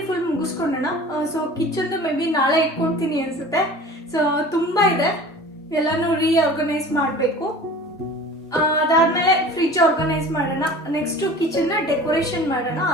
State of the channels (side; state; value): both; normal; correlation 0.41